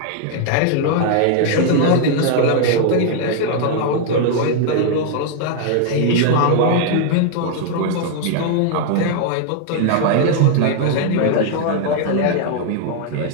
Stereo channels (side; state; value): both; different; correlation 0.00